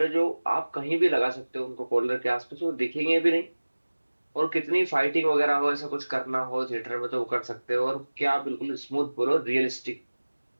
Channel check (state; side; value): inverted; both; correlation -1.00